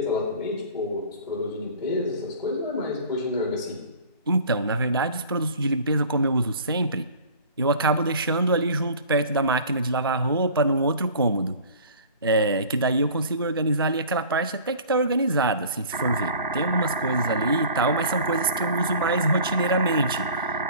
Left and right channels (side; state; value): both; inverted; correlation -0.44